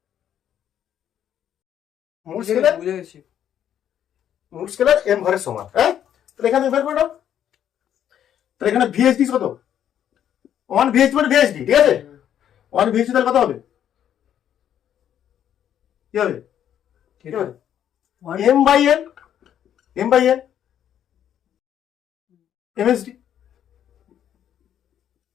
মূল স্কেলের m ঘরের সমান, হ্যাঁ। তাহলে এখানে বের করে নাও, তাহলে এখানে VSD কত? 1 VSD মানে VSD, ঠিক আছে। 1 VSD তাহলে কত হবে? কি হবে? m by n, m by n MSD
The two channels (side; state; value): right; quieter; 10.0 dB